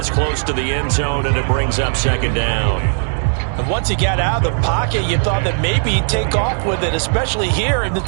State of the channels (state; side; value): silent; left; digital silence